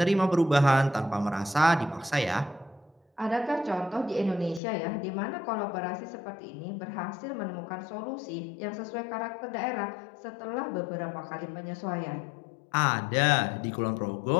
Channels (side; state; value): right; drops out; at 4.6 s